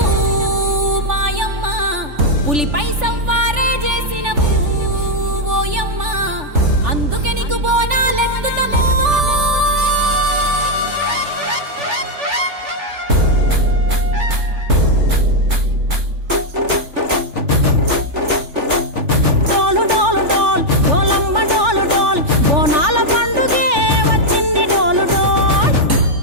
మాయమ్మ పులిపై సవ్వారే చేసినవు ఓయమ్మ అందుకే నీకు బోనాలెత్తుతము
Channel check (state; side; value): late; left; 3.4 ms